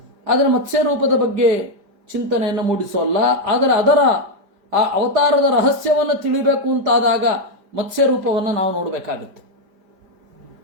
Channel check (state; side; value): late; left; 5.0 ms